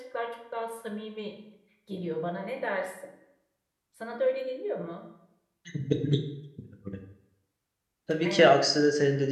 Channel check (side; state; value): both; identical; correlation 1.00